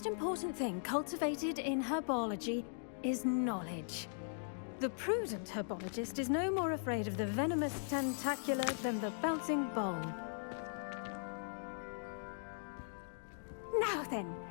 important thing cultivated in herbology is knowledge. The prudent herbologist is no more afraid of the venomous tentacula than the bouncing bulb. Now then,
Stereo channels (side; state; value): right; silent; digital silence